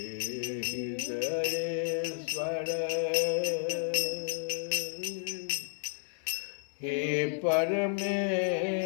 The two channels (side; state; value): right; silent; 56 dB below the other